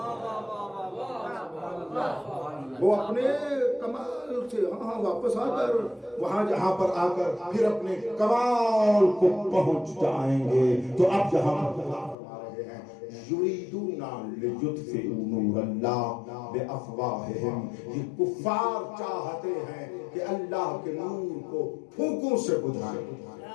وہ اپنے کمال سے واپس آ کر وہاں جہاں پر آ کر پھر اپنے کمال کو پہنچ جائیں گے. تو اب جہاں یریدون لیطفئوا نور اللہ بافواہہم, یہ کفار چاہتے ہیں کہ اللہ کے نور کو پھونکوں سے بجھائیں.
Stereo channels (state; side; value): drops out; right; at 12.2 s